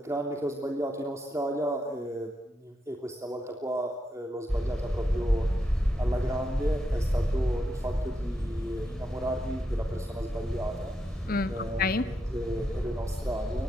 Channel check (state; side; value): normal; both; correlation 0.83